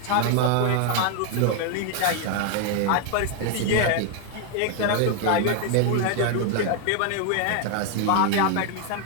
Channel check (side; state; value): both; different; correlation 0.00